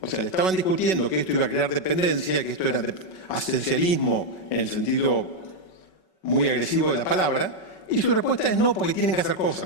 sea, le estaban discutiendo que esto iba a crear dependencia, que esto era asistencialismo en el sentido muy agresivo de la palabra, y su respuesta es no, porque tienen que hacer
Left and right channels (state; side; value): late; right; 5.3 ms